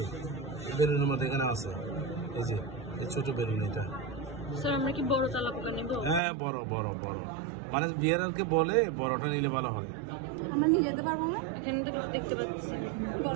বেলুনের মধ্যে এখানে আছে এই যে এই ছোট বেলুন এটা স্যার আমরা কি বড় তালাবটা নেব হ্যাঁ বড় বড় বড় মানে বিয়ারকে বলে বড়টা নিলে ভালো হয় আমরা নিয়ে যেতে পারবো না এখানে দেখতে পাচ্ছি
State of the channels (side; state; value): left; drops out; at 6.2 s